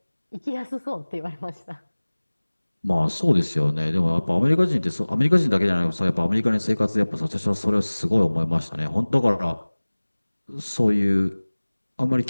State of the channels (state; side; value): inverted; both; correlation -1.00